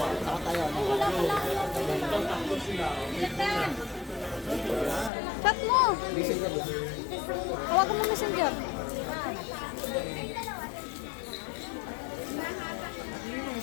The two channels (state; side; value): drops out; right; at 5.1 s